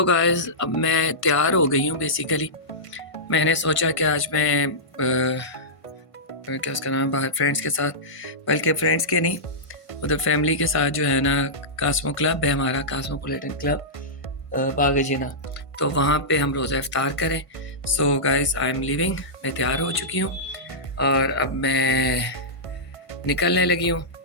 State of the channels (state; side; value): late; right; 1.5 ms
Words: گائز اب میں تیار ہو گئی ہوں بیسیکلی. میں نے سوچا کہ آج میں کیا اس کا نام باہر فرینڈس کے ساتھ، بلکہ فرینڈس کے نہیں، ادھر فیملی کے ساتھ جو ہے نا کاسمو کلب ہے ہمارا، کاسموپولیٹن کلب باغ جینا، تو وہاں پہ ہم روزہ افطار کریں. So guys I am leaving, میں تیار ہو چکی ہوں اور اب میں نکلنے لگی ہوں